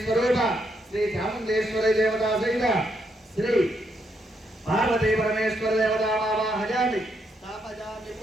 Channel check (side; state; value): both; normal; correlation 0.77